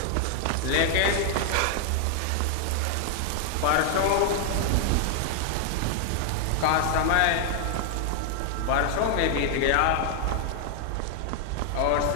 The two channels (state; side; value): different; both; correlation 0.00